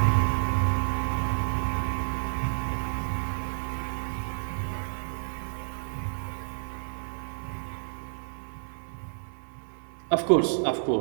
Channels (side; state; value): left; silent; digital silence